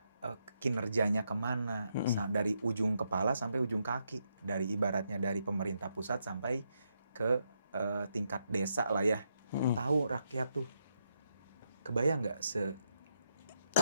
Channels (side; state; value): both; inverted; correlation -0.80